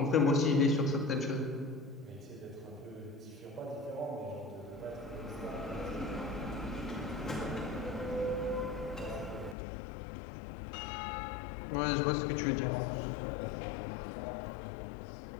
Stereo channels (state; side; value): drops out; right; at 9.6 s